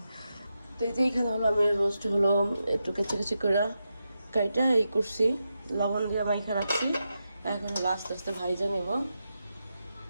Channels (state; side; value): inverted; both; correlation -0.88